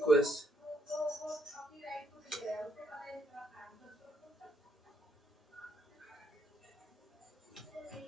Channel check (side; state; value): both; normal; correlation 0.73